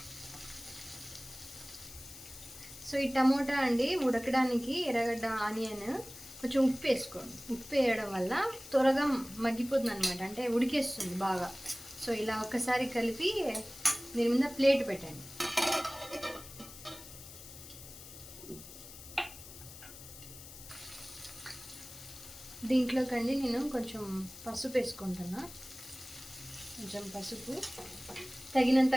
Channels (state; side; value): noise; left; hiss, 15 dB below the sound